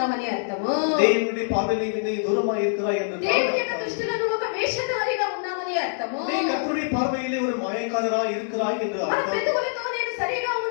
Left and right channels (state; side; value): silent; right; digital silence